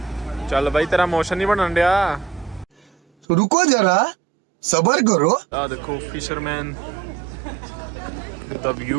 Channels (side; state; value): left; drops out; at 3.2 s